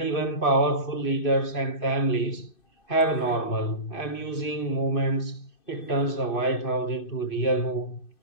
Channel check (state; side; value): late; right; 2.5 ms